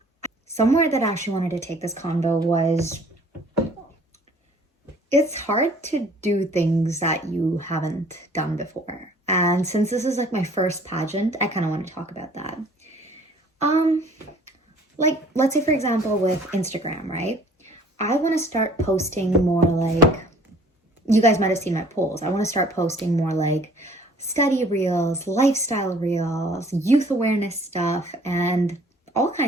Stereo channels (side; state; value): both; normal; correlation 0.54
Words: somewhere that I actually wanted to take this convo was it's hard to do things that you haven't done before. And since this is like my first pageant, I kind of want to talk about that. Like, let's say for example with Instagram, right? I want to start posting more like, you guys might have seen my polls. I want to start posting more like study reels, lifestyle reels, youth awareness stuff, and all